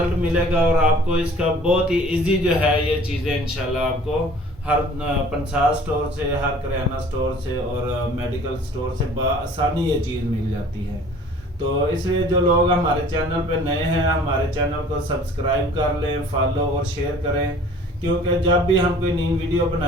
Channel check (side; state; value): both; normal; correlation 0.50